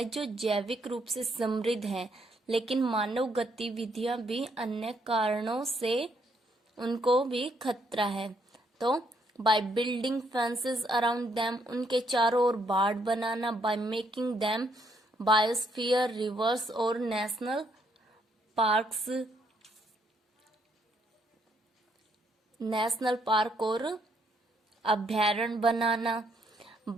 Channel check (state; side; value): normal; both; correlation 0.72